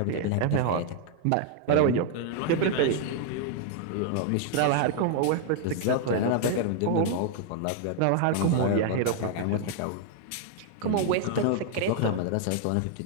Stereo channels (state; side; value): different; both; correlation 0.00